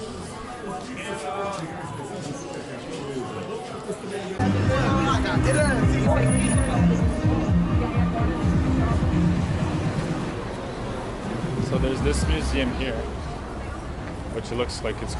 So there's this museum here, which looks like it's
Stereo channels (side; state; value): both; identical; correlation 1.00